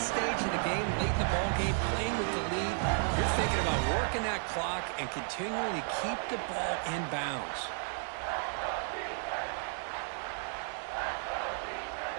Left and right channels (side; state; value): left; silent; 56 dB below the other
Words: stage of the game, late in the ball game, playing with the lead, you're thinking about working that clock and continuing to keep the ball in bounds.